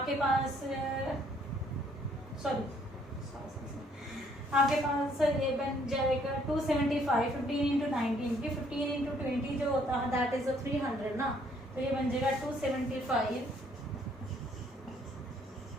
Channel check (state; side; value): normal; both; correlation 0.65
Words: पास आपके पास ये बन जाएगा 275। 15 into 19 की 15 into 20 जो होता है दैट इज 300 ना, तो ये बन जाएगा 275